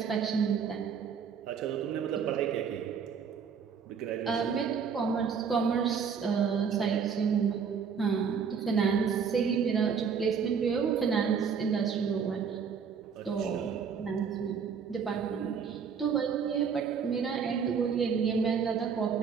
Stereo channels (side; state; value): left; quieter; 6.6 dB